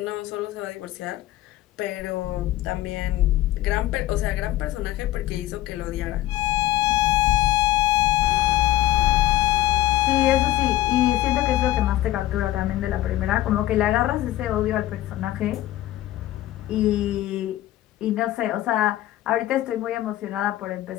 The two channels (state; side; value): quieter; right; 15.0 dB